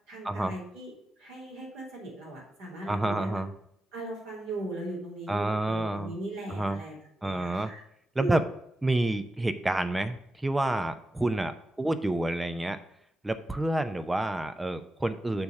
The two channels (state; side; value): normal; both; correlation 0.91